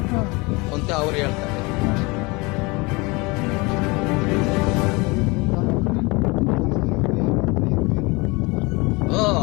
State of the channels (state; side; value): quieter; right; 25.9 dB